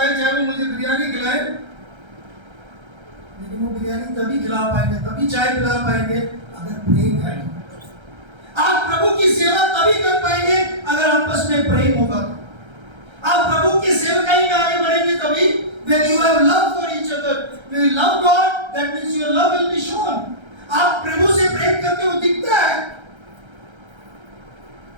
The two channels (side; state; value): left; late; 1.3 ms